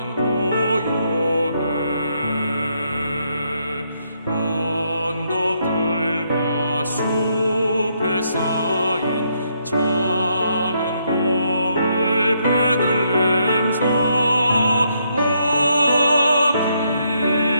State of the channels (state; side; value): inverted; both; correlation -0.75